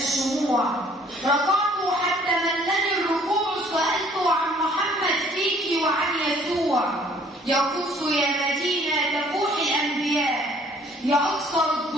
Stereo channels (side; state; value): both; normal; correlation 0.58